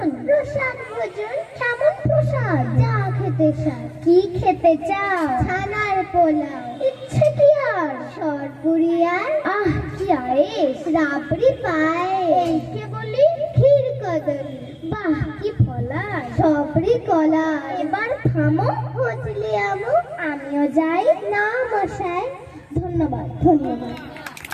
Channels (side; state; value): both; identical; correlation 1.00